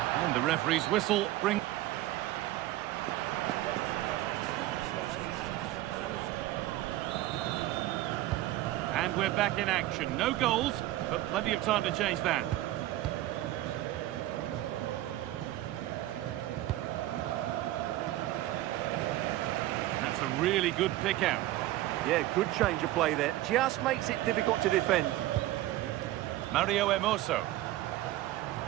And the referee's whistle brings... And we're back in action. No goals, but plenty of time to change that. That's a really good pick out. Yeah, good change of play there. Just makes it difficult to defend. Mario Hermoso.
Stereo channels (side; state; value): left; quieter; 15.7 dB